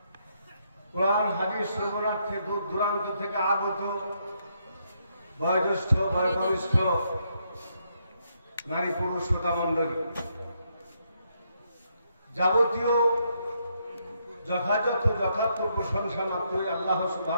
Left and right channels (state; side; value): inverted; both; correlation -0.76